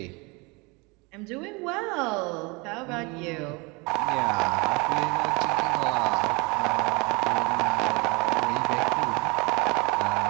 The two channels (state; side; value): quieter; left; 27.7 dB